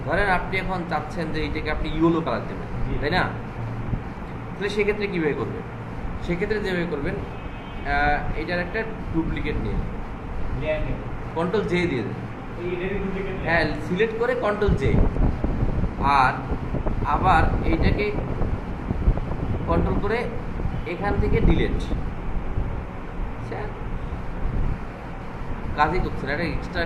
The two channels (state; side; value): identical; both; correlation 1.00